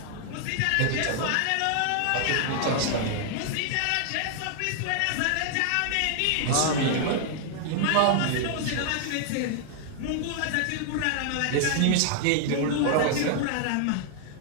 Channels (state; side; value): different; both; correlation 0.00